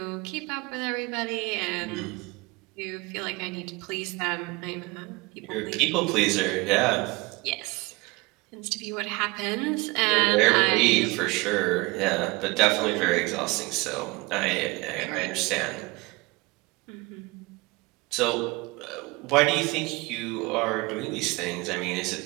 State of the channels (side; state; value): left; quieter; 24.0 dB